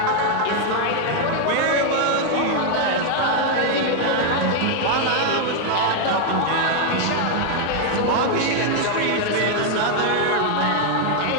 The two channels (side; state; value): both; different; correlation 0.00